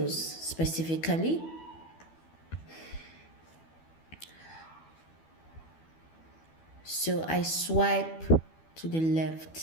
specifically. So I swipe to the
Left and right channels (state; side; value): late; right; 12 ms